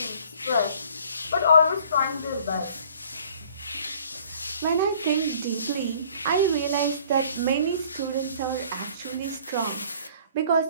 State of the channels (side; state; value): both; inverted; correlation -0.54